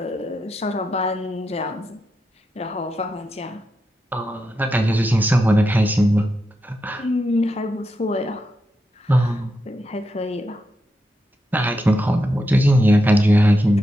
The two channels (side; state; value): both; normal; correlation 0.86